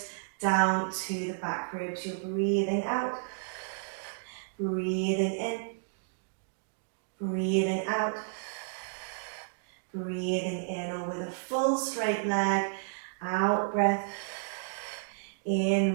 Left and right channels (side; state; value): left; silent; digital silence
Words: down to the back ribs. You're breathing out, breathing in, breathing out, breathing in, or with a full straight leg, out breath, in